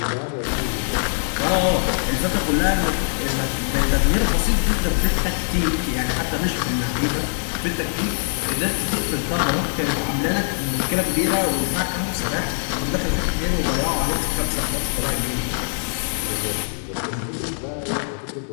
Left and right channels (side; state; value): right; silent; 64 dB below the other